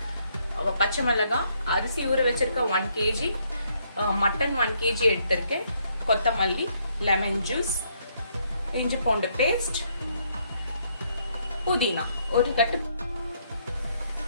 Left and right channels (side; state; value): both; inverted; correlation -0.71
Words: பச்சை மிளகாய், அரிசி ஊற வச்சிருக்க 1 kg, மட்டன் 1 kg எடுத்திருக்கேன், கொத்தமல்லி, லெமன் ஜூஸ், இஞ்சி பூண்டு பேஸ்ட், புதினா ஒரு கட்டு.